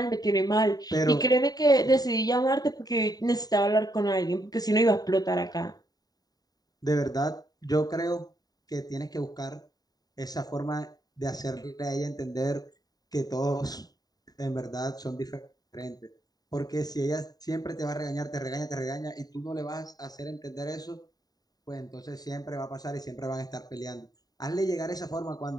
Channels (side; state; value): right; late; 0.18 ms